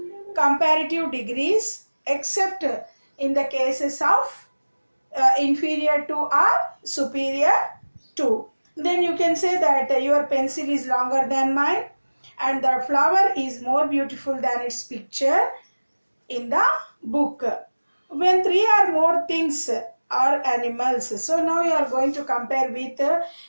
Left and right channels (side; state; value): both; inverted; correlation -1.00